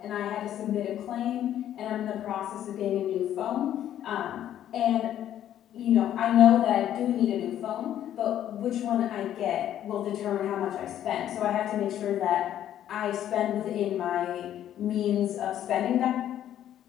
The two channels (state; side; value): quieter; right; 11.2 dB